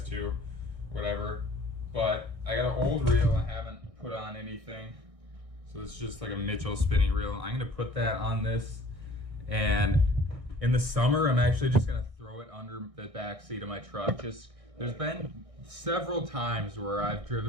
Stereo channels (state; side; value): late; left; 1.6 ms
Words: too, whatever. But I got an old reel I haven't put on anything, so it's just like a Mitchell spinning reel. I'm gonna put that on this, and in the summer I'm actually just gonna throw it under the back seat of my truck. There's been several times where I've